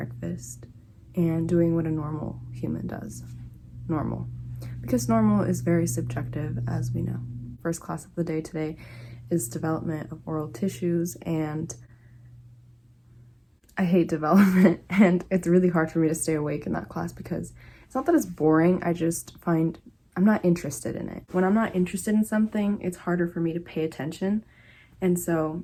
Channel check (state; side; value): identical; both; correlation 1.00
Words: and doing what a normal human does. Normal. Because normal is very subjective, as we know. First class of the day today is development of oral tissues, and I hate development, and it's really hard for me to stay awake in that class because it's not that it's boring, I just find I'm not interested in it. When I'm not interested in something, it's harder for me to pay attention, and so